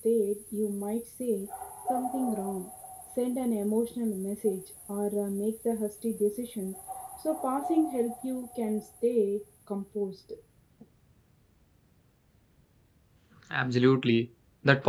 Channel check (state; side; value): identical; both; correlation 1.00